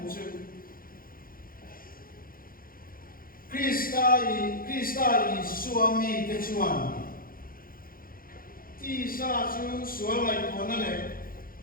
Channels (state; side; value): late; right; 0.42 ms